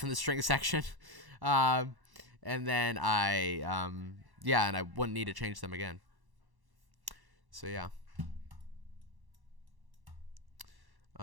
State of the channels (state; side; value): late; left; 1.1 ms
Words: in the string section, and then and I wouldn't need to change them again. So yeah.